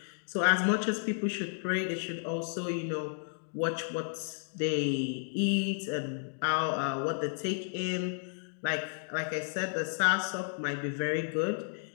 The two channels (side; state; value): right; silent; digital silence